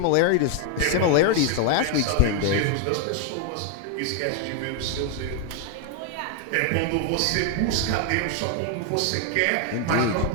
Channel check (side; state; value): both; different; correlation 0.00